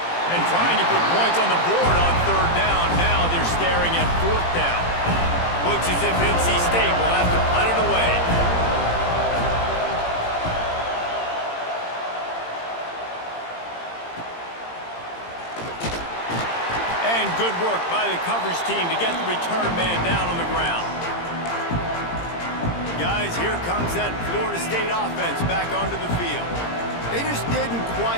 And trying to put points on the board on 3rd down. Now they're staring at 4th down. Looks as if NC State will have to punt it away. the coverage team to get the return man down on the ground. Guys, here comes that Florida State offense back onto the field. They just didn't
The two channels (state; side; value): late; right; 17 ms